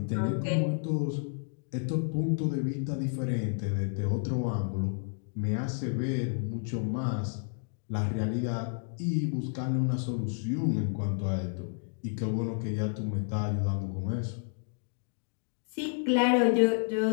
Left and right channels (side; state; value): right; silent; digital silence